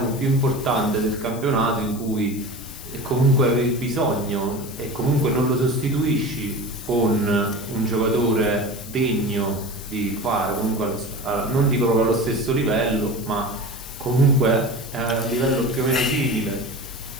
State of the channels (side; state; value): left; noise; hiss, 16 dB below the sound